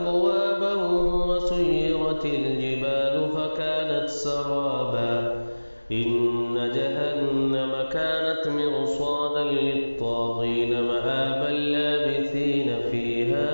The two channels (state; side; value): inverted; both; correlation -1.00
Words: وسيرت الجبال فكانت سرابا إن جهنم كانت مرصادا للطاغين مآبا لابثين فيها